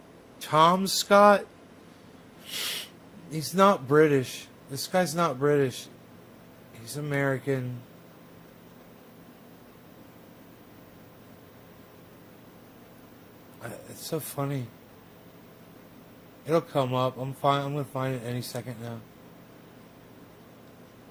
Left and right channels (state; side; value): identical; both; correlation 1.00